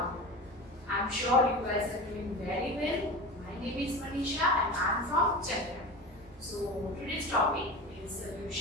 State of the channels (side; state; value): both; normal; correlation 0.30